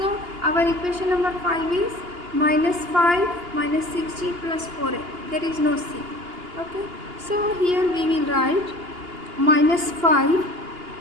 our equation number 5 is minus 5 minus 6g plus 4f. There is no c. Okay, so here we will write minus 5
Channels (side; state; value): left; late; 2.8 ms